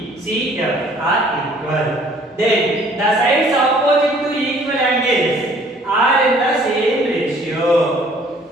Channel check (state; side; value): normal; both; correlation 0.57